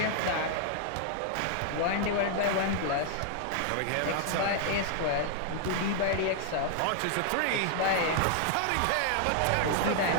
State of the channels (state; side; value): different; both; correlation -0.01